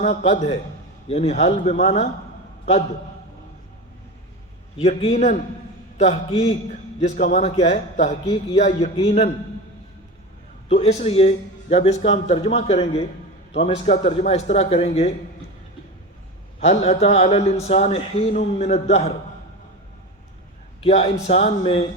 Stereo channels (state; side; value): normal; both; correlation 0.25